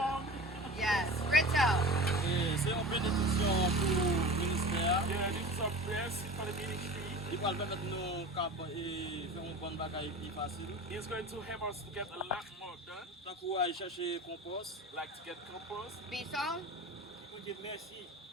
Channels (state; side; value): normal; both; correlation 0.35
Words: Yes. Rito. C'est une bénédiction pour le ministère. Yeah, this is a blessing for the ministry. Il va permettre nous de faire un bon bagage plus facile. It's going to help us to get a lot more done. Tant qu'on va chercher compost. Like to get compost. Bison. Merci.